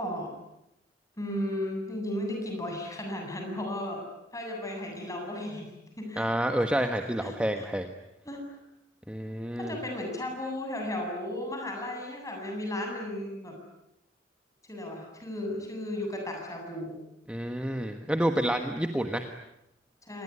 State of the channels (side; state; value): both; normal; correlation 0.70